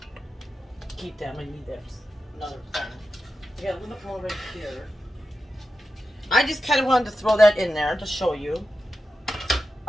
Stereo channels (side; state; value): both; normal; correlation 0.91